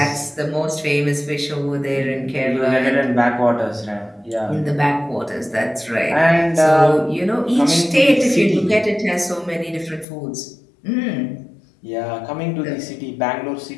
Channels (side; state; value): right; drops out; at 10.1 s